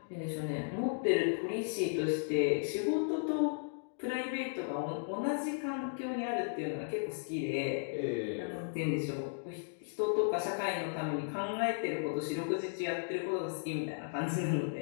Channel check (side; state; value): right; silent; digital silence